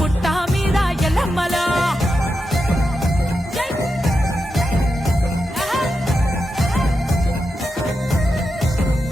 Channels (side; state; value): both; normal; correlation 0.88